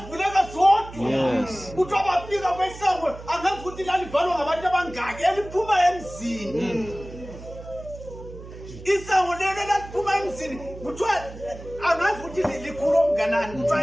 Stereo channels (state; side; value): noise; right; hum, 15 dB below the sound